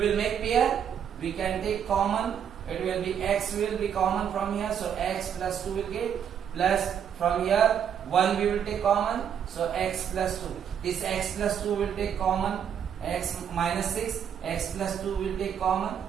make pair, we can take common, it will be x will be common from here, so x plus 2 will get, plus from here 1 we will take common, so x plus 2. This x plus 2 will take common, x minus 6, x plus 2 will take common.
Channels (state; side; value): quieter; left; 8.5 dB